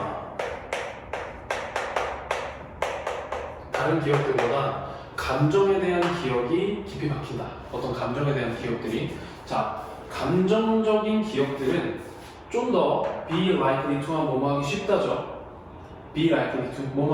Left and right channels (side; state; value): both; identical; correlation 1.00